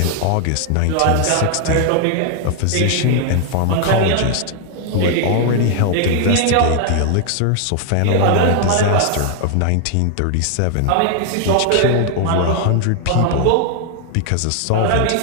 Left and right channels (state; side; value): different; both; correlation 0.00